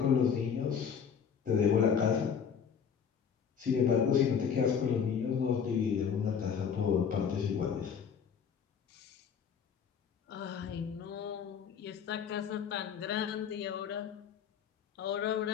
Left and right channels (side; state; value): right; quieter; 7.1 dB